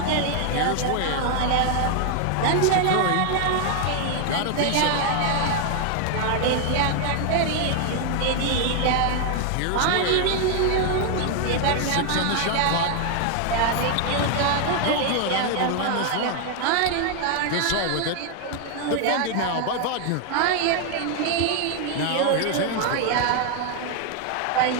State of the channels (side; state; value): both; different; correlation 0.00